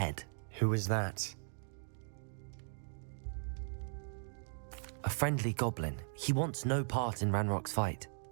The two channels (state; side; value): silent; left; digital silence